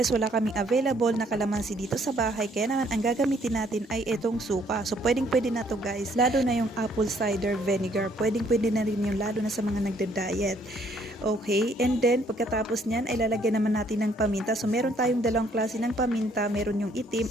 wala kaming available na kalamansi dito sa bahay. Kaya naman ang gagamitin natin ay itong suka. So pwedeng-pwede na to guys. Lalo na yung apple cider vinegar. Pwedeng-pwede na rin yung lalo na sa mga nagda-diet. Okay, and then pagkatapos niyan ay lalagyan naman natin ng paminta. So meron tayong dalawang klase ng paminta, meron yung itim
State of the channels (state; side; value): normal; both; correlation 0.65